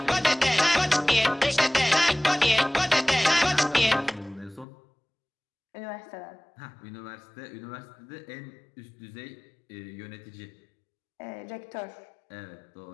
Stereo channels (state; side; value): drops out; right; at 4.7 s